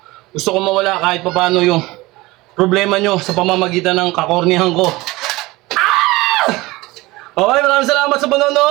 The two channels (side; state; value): left; quieter; 20.7 dB